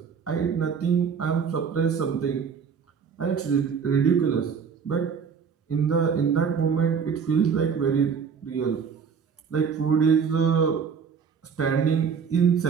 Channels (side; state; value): left; quieter; 6.5 dB